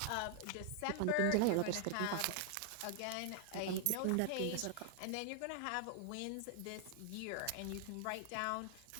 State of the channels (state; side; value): different; both; correlation 0.00